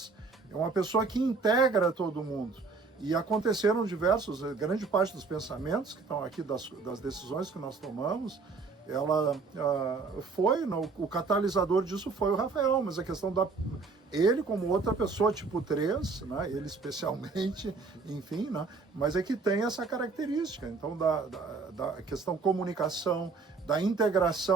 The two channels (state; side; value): quieter; left; 4.4 dB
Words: é uma pessoa que integra todo mundo. E aconteceram grande parte dos pensamentos que estão aqui, das decisões que nós tomamos, o catalisador disso foi o Rafael, mas a questão ele como outra pessoa tipo 3, né? Ele especialmente, enfim, né? Mas é que tem essa característica. Então, da questão comunicação, da